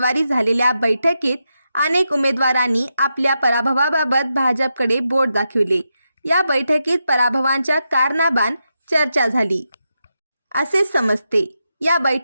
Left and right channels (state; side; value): inverted; both; correlation -0.86